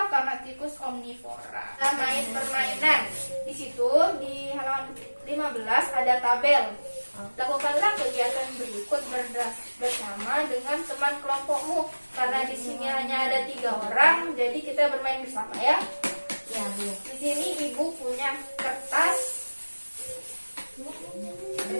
karena tikus omnivora. Nah, main permainan. Di situ di halaman 15 ada tabel. Lakukanlah kegiatan berikut bersama dengan teman kelompokmu. Karena di sini hanya ada 3 orang, jadi kita bermain bersama ya. Ya, Bu. Di sini ibu punya kertas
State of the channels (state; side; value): inverted; both; correlation -1.00